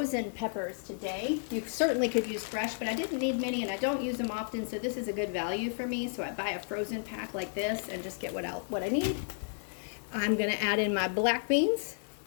peppers today. You certainly could use fresh, but I didn't need many and I don't use them often, so this is a good value for me. So I buy a frozen pack like this and just get what I need. I'm gonna add in my black beans.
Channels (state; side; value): silent; right; 56 dB below the other